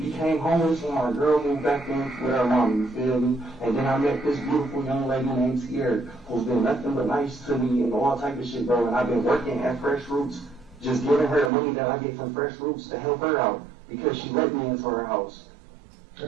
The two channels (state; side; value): drops out; left; at 11.5 s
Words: became homeless when my girl moved back in with her mom, you feel me? And then I met this beautiful young lady named Sierra, who's been nothing but nice to me and all type of shit, bro. And I've been working at Fresh Roots, just giving her the money that I get from Fresh Roots to help her out because she let me into her house.